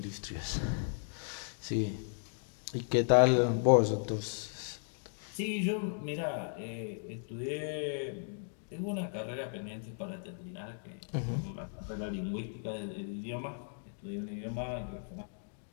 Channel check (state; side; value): silent; right; digital silence